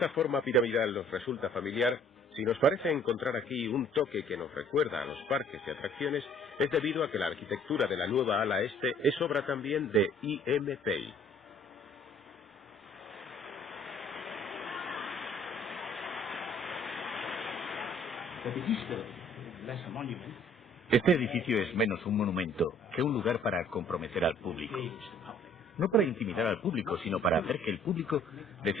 forma piramidal nos resulta familiar, si nos parece encontrar aquí un toque que nos recuerda a los parques y atracciones, es debido a que la arquitectura de la nueva ala este es obra también de I.M. Pei. Este edificio es menos un monumento que un lugar para comprometer al público. No para intimidar al público, sino para hacer que el público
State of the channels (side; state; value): both; normal; correlation 0.57